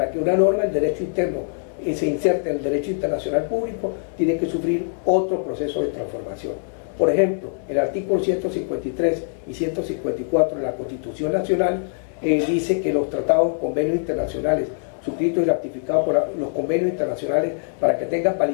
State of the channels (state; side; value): silent; right; digital silence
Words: que una norma del derecho interno se inserte en el derecho internacional público, tiene que sufrir otro proceso de transformación. Por ejemplo, el artículo 153 y 154 de la Constitución Nacional dice que los tratados, convenios internacionales suscritos y ratificados por los convenios internacionales, para que tengan